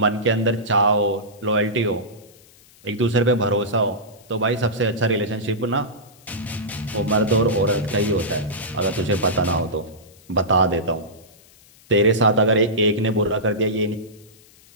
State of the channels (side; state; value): left; noise; hiss, 27 dB below the sound